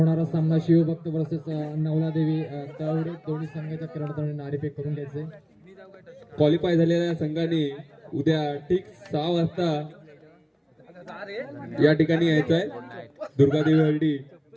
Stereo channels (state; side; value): identical; both; correlation 1.00